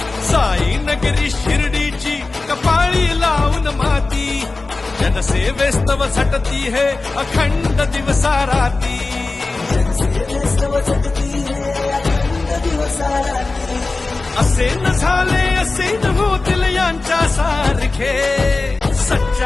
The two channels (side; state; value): right; quieter; 3.5 dB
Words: साई नगरी शिर्डीची कपाळी लावून माती, जनसेवेस्तव झटती है अखंड दिवसा राती, असे न झाले असे न होतील यांच्या सारखे,